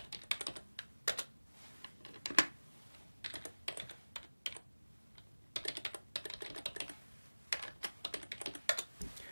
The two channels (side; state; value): both; inverted; correlation -1.00